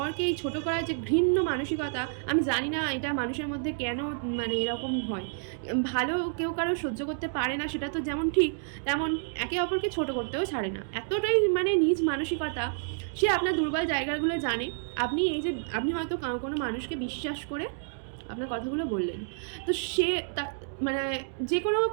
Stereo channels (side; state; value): left; silent; digital silence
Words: এই ছোটো করার যে ঘৃণ্য মানসিকতা, আমি জানি না এটা মানুষের মধ্যে কেন মানে এরকম হয়। ভালো কেউ কারো সহ্য করতে পারে না, সেটা তো যেমন ঠিক, তেমন একে অপরকে ছোট করতেও ছাড়ে না। এতটাই মানে নিজ মানসিকতা। সে আপনার দুর্বল জায়গাগুলো জানে। আপনি এই যে আপনি হয়তো কোনো মানুষকে বিশ্বাস করে আপনার কথাগুলো বললেন, তো সে মানে যে কোনো